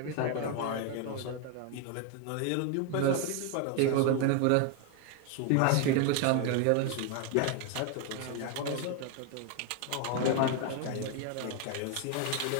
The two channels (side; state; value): both; different; correlation 0.01